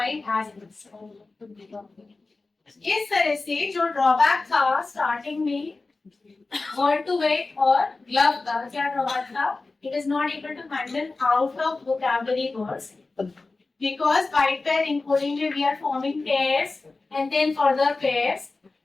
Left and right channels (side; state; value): right; quieter; 3.6 dB